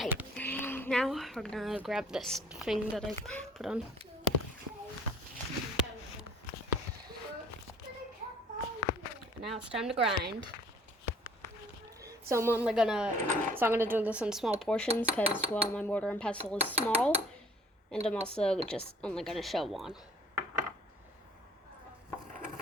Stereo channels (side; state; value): both; normal; correlation 0.54